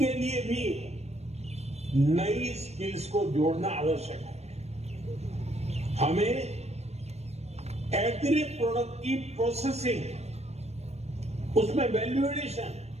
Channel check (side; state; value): left; late; 0.31 ms